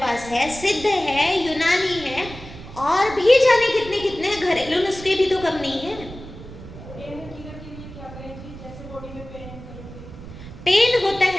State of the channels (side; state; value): right; noise; rumble, 14 dB below the sound